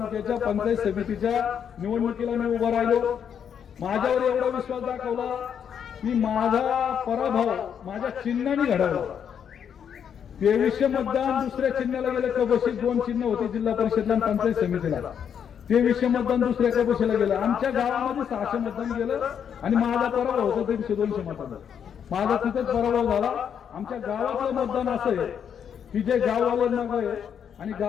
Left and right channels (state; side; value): quieter; right; 8.0 dB